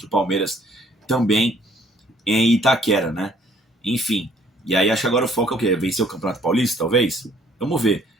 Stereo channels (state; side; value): normal; both; correlation 0.61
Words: o Palmeiras também em Itaquera, né? Enfim, e aí acho que agora o foco é o quê? Vencer o Campeonato Paulista, talvez? Vamos ver.